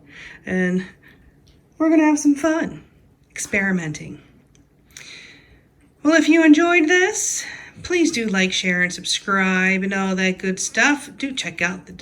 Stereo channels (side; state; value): both; identical; correlation 1.00